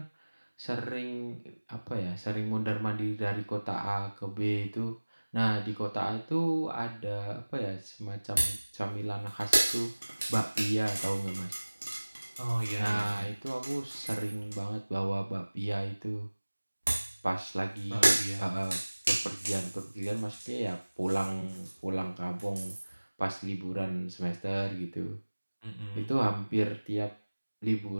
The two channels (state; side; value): inverted; both; correlation -1.00